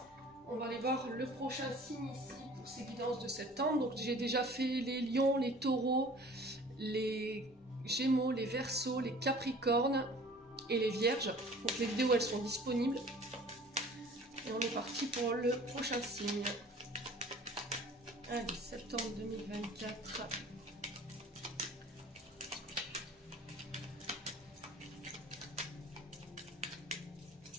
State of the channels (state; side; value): normal; both; correlation 0.47